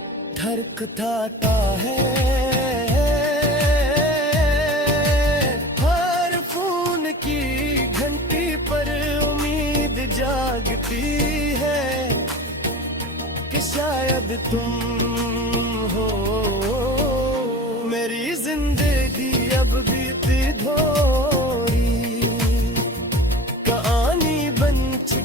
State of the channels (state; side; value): normal; both; correlation 0.36